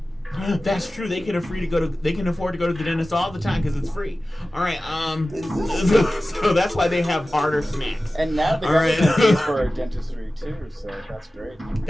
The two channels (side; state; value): both; normal; correlation 0.96